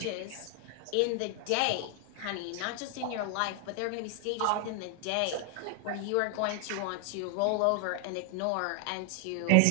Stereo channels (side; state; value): both; different; correlation 0.00